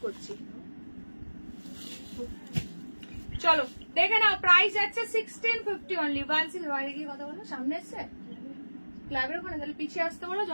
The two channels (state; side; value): inverted; both; correlation -1.00